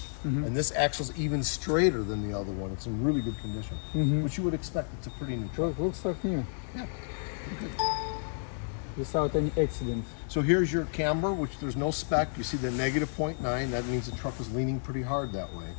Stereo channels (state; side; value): silent; right; digital silence